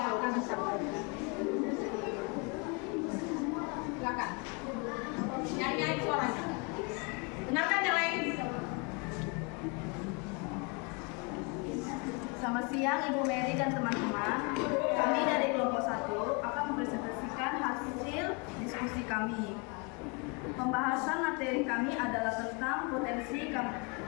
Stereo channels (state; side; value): quieter; right; 31.6 dB